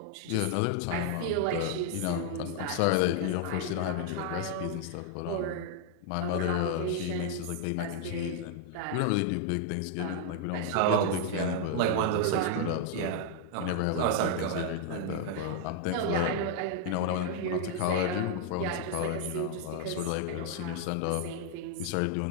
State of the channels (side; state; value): both; different; correlation 0.00